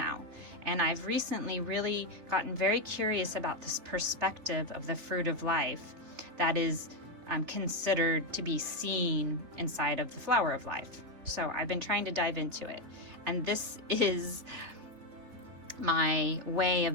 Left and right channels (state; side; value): late; left; 3.5 ms